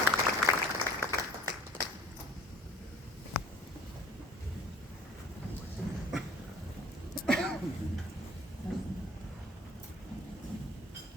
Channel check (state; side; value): normal; both; correlation 0.49